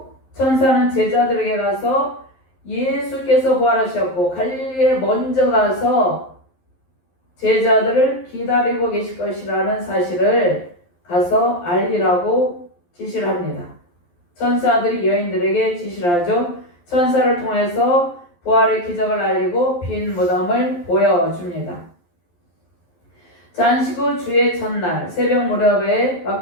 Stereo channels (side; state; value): right; late; 11 ms